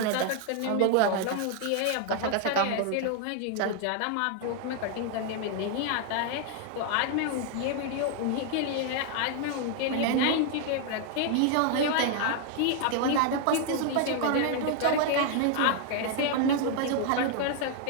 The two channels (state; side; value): different; both; correlation 0.00